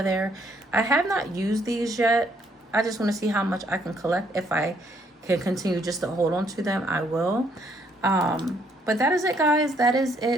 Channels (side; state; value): both; normal; correlation 0.68